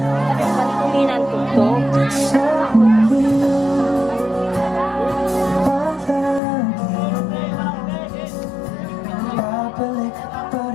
Kuminan ko to. sa mundo babalik pa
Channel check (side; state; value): right; drops out; at 6.4 s